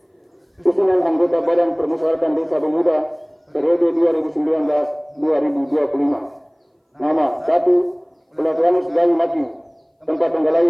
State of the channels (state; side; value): identical; both; correlation 1.00